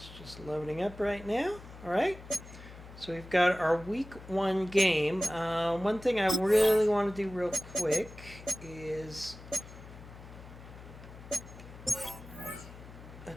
just loading up right now. All right. So we've got our week 1 game. One thing I really want to do real quick is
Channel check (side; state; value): left; noise; hum, 16 dB below the sound